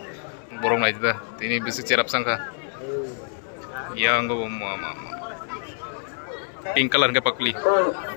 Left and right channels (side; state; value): right; silent; 61 dB below the other